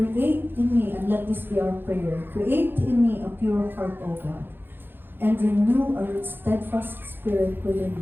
in me, and let this be our prayer, create in me a pure heart, O God, and renew a steadfast spirit within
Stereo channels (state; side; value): late; left; 0.099 ms